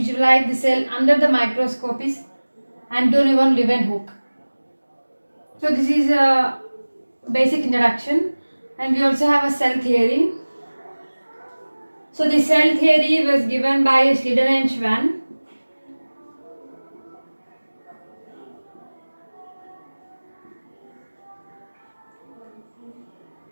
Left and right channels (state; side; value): inverted; both; correlation -1.00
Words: the cell under the microscope is Antonio von Leeuwenhoek. So this is a basic introduction, and we also have a cell theory. So the cell theory was given by Schleiden and Schwann.